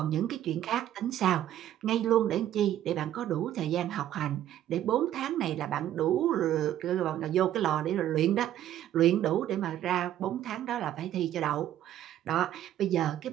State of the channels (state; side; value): quieter; left; 12.0 dB